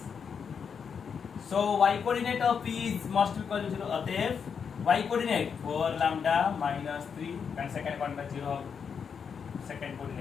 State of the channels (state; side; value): quieter; right; 6.6 dB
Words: So y coordinate of P is must be equal to 0. अतएव y coordinate 4 lambda minus 3 and second one by 0 second